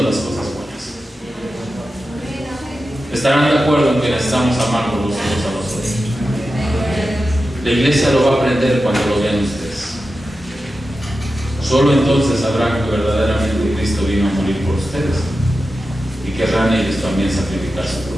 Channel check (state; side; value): normal; both; correlation 0.92